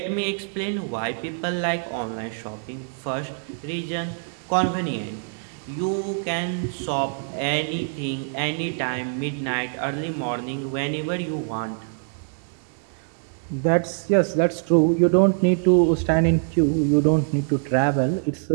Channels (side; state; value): left; silent; digital silence